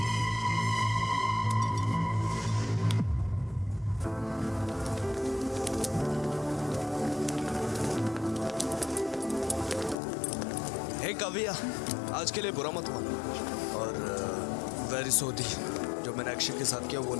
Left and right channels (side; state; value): right; drops out; at 10.0 s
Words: Hey Kavya, आज के लिए बुरा मत मानो, और वेरी सॉरी। जो मैंने अक्षय के साथ किया वो